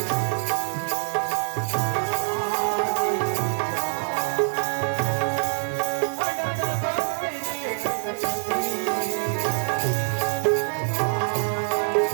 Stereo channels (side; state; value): left; silent; 58 dB below the other